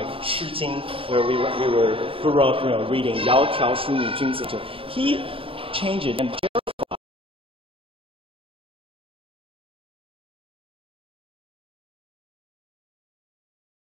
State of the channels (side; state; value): left; late; 0.26 ms